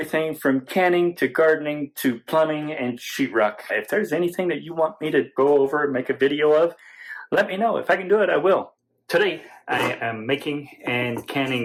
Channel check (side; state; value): both; identical; correlation 1.00